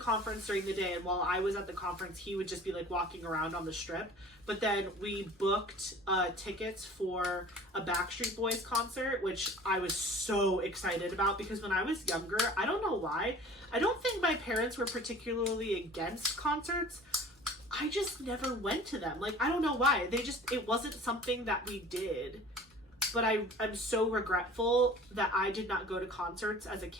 during the day, and while I was at the conference, he would just be like walking around on the strip. But then we booked tickets for a Backstreet Boys concert, which I was so excited about because when I was younger, I don't know why, I don't think my parents were particularly against concerts. I just never went to them. Like, I don't know why. It wasn't something that we did. But I'm so regretful that I did not go to concerts as a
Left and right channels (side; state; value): both; normal; correlation 0.45